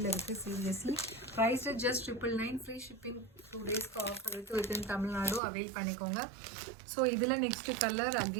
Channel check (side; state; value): left; drops out; at 5.4 s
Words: இருக்குது seriously. Price just 999. Free shipping 2 டேஸ்க்கு ஆஃபர் இருக்குது வித்தின் தமிழ்நாடு, அவைல் பண்ணிக்கோங்க. ஸோ இதில் நெக்ஸ்ட் கலர்